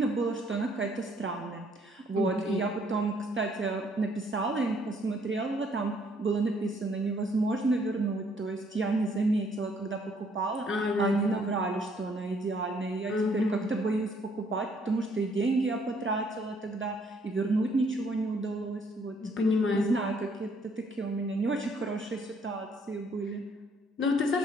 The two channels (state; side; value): normal; both; correlation 0.65